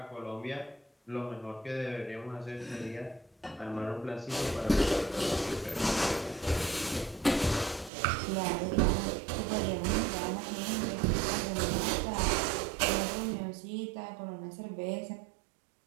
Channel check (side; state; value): left; drops out; at 7.9 s